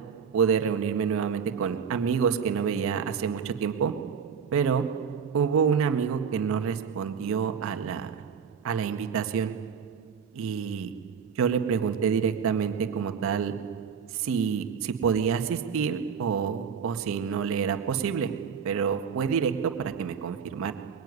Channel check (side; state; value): left; quieter; 6.7 dB